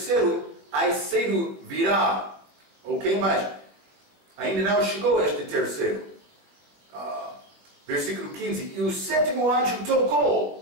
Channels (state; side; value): late; left; 20 ms